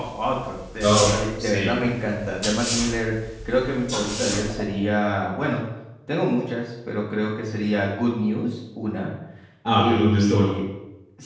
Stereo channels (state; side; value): identical; both; correlation 1.00